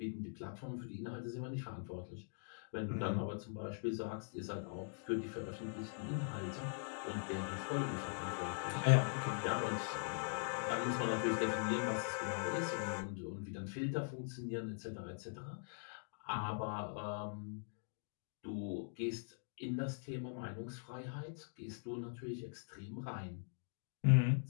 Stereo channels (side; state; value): right; silent; digital silence